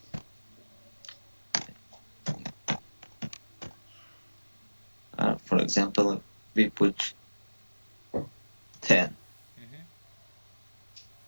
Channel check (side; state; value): both; inverted; correlation -1.00